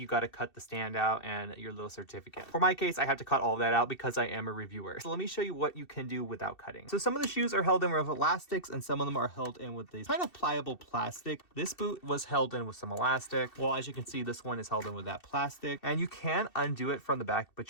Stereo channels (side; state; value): right; late; 2.7 ms